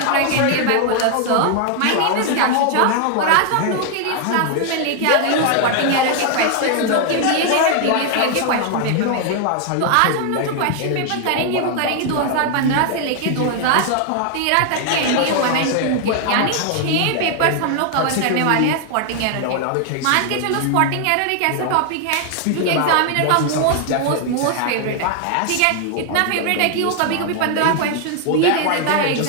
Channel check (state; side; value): different; both; correlation 0.00